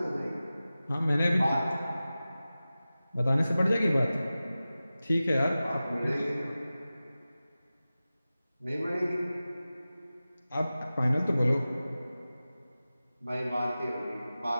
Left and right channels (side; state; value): both; inverted; correlation -0.96